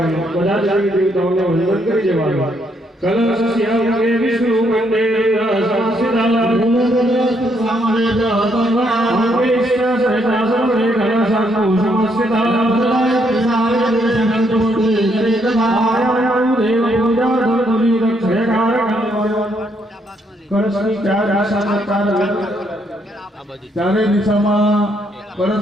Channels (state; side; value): normal; both; correlation 0.73